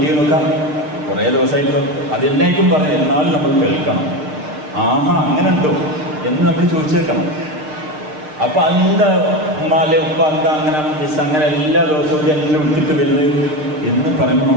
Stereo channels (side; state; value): left; late; 6.6 ms